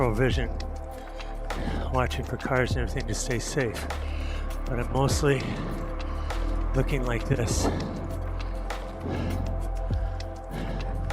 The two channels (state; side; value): identical; both; correlation 1.00